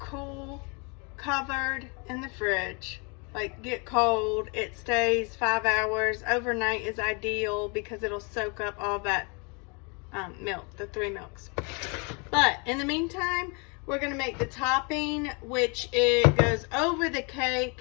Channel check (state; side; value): quieter; right; 32.8 dB